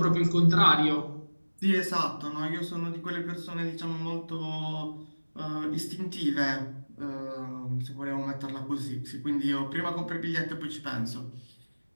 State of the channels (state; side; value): inverted; both; correlation -1.00